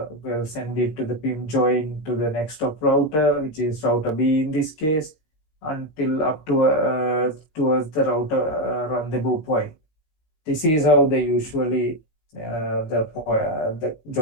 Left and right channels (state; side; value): late; right; 19 ms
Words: will send it to the PIM join to the next of router, which is router B in this case, until up to towards the router rendezvous point. This is how they usually the